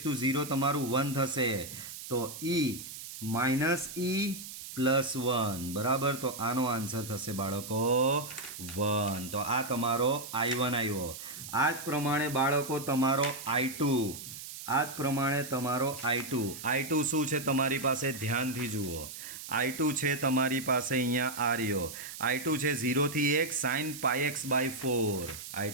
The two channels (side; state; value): right; noise; hiss, 11 dB below the sound